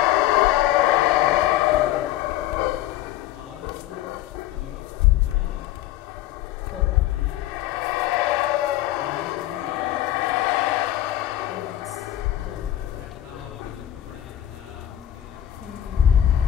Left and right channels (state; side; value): quieter; right; 13.4 dB